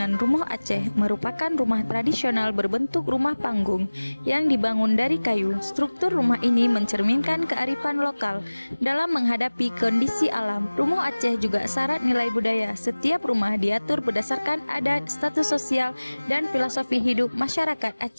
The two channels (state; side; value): inverted; both; correlation -1.00